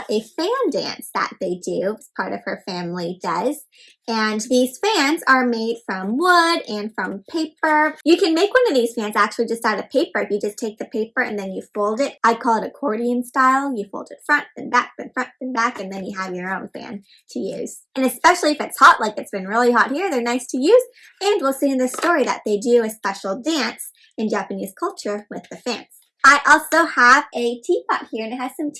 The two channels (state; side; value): identical; both; correlation 1.00